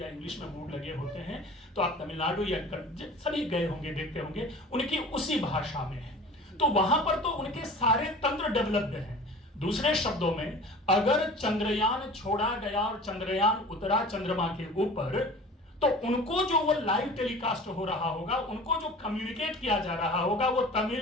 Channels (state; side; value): normal; both; correlation 0.41